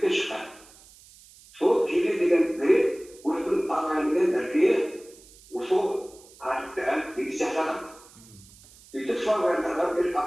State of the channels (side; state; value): right; noise; hiss, 24 dB below the sound